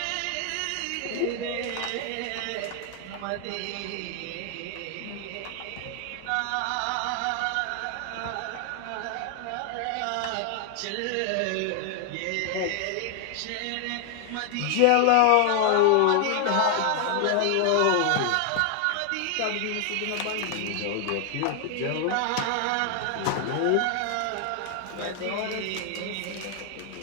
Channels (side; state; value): both; different; correlation 0.00